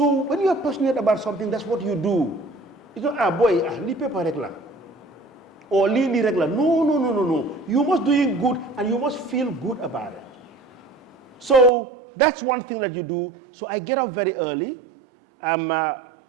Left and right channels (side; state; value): left; drops out; at 11.7 s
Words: when you are passionate about something, that's what you do. It's not, li paper regular. Or li regular. No. You must do it good and you must feel good about it. So that's one thing that you do. So I get up very early.